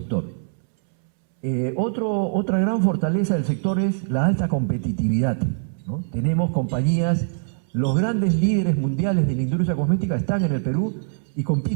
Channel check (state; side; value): silent; left; 64 dB below the other